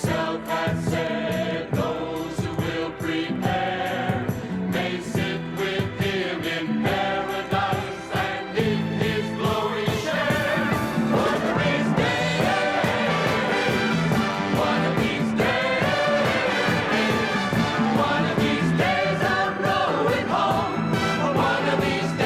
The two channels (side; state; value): both; identical; correlation 1.00